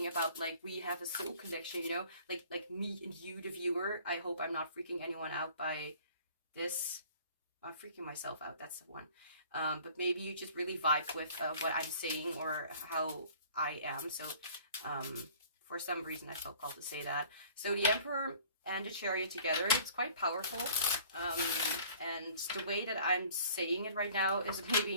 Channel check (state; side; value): inverted; both; correlation -0.51